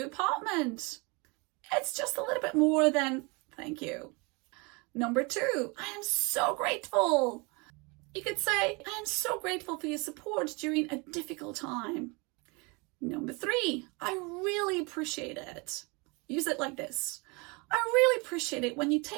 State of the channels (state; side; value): quieter; left; 28.8 dB